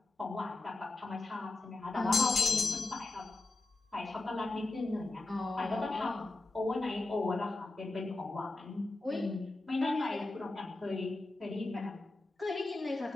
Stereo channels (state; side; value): quieter; right; 3.1 dB